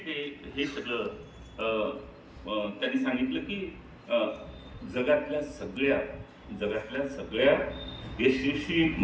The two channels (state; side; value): identical; both; correlation 1.00